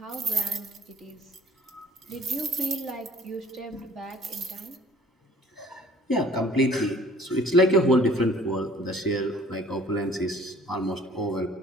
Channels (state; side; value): normal; both; correlation 0.53